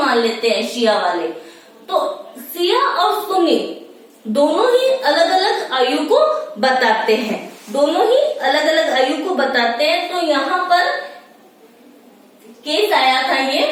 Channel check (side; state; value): both; identical; correlation 1.00